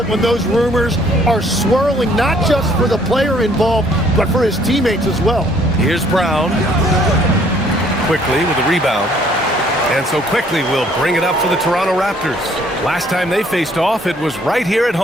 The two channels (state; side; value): normal; both; correlation 0.62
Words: when those rumors are swirling, not just for the player involved, but for his teammates as well. Here's Brown. Quickly with a rebound. And so Quickly will bring it up for the Toronto Raptors. Last time they faced off, it was right here at